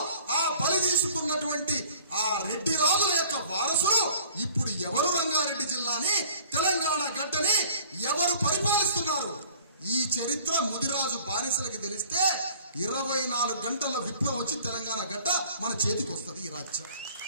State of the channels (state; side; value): inverted; both; correlation -0.50